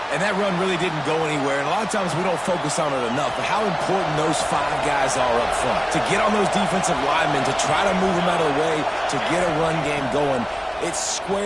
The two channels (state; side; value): identical; both; correlation 1.00